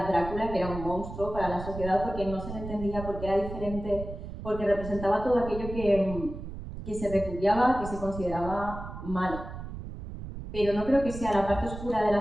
Drácula, que era un monstruo para la sociedad porque no se le entendía, porque era diferente, porque representaba todo aquello que se repudiaba, que se consideraba malo. Pero no creo que sea la parte oscura de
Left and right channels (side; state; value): right; noise; rumble, 9 dB below the sound